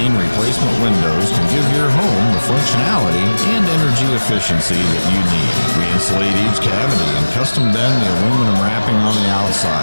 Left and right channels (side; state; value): both; inverted; correlation -1.00